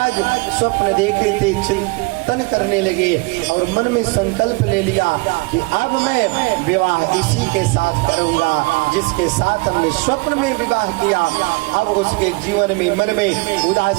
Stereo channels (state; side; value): quieter; left; 26.2 dB